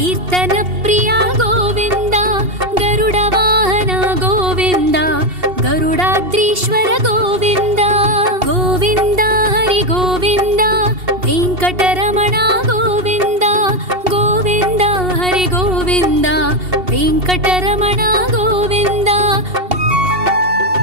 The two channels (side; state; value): left; late; 2.7 ms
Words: प्रिय गोविन्द गरुड वाहन गोविन्द गरुडाद्रीश्वर गोविन्द गोविन्द हरि गोविन्द वेङ्कटरमण गोविन्द गोविन्द हरि गोविन्द वेङ्कटरमण गोविन्द।